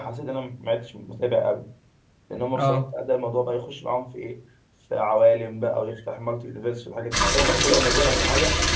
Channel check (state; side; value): identical; both; correlation 1.00